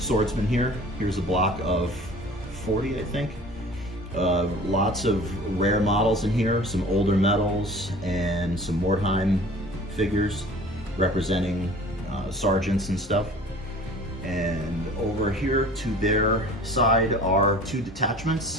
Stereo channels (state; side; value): normal; both; correlation 0.45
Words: here. Here's a block of 40, I think. Lots of rare models in here, some older medals, and some Mordheim figures representing sergeants and stuff. And over here to their side are 2